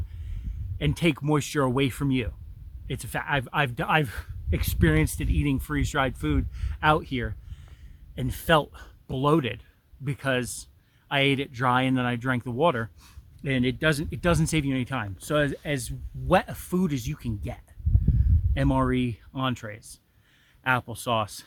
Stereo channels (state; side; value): identical; both; correlation 1.00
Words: and take moisture away from you. It's a fact. I've experienced it eating freeze-dried food out here and felt bloated because I ate it dry and then I drank the water, and it doesn't save you any time. So as wet a food as you can get, MRE entrees, applesauce,